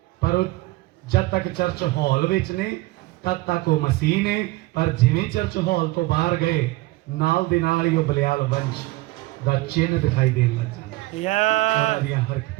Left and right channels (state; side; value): quieter; left; 20.3 dB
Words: ਪਰ ਉਹ ਜਦ ਤੱਕ ਚਰਚ ਹਾਲ ਵਿੱਚ ਨੇ ਤਦ ਤੱਕ ਉਹ ਮਸੀਹ ਨੇ, ਪਰ ਜਿਵੇਂ ਚਰਚ ਹਾਲ ਤੋਂ ਬਾਹਰ ਗਏ ਨਾਲ ਦੇ ਨਾਲ ਹੀ ਉਹ ਬਲਿਆਲ ਵੰਸ਼ ਦਾ ਚਿੰਨ੍ਹ ਦਿਖਾਈ ਦੇਣ ਲੱਗ ਜਾਂਦਾ। ਉਹਨਾਂ Yes. ਦੀਆਂ